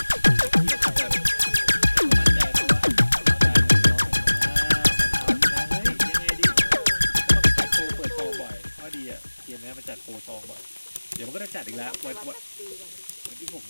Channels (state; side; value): inverted; both; correlation -1.00